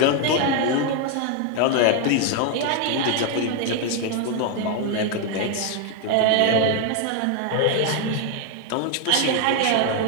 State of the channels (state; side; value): different; both; correlation 0.00